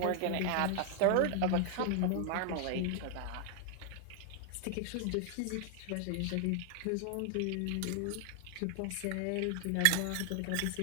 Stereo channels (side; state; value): both; different; correlation 0.00